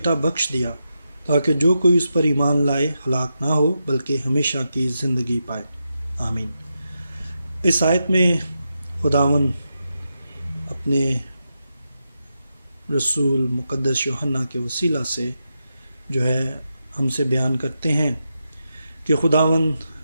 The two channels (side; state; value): both; inverted; correlation -0.87